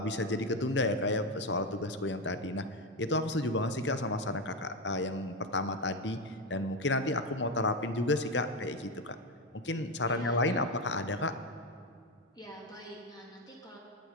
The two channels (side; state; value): both; normal; correlation 0.12